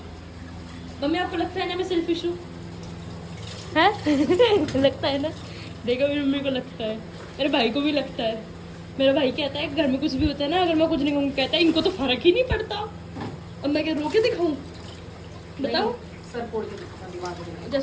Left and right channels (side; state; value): both; identical; correlation 1.00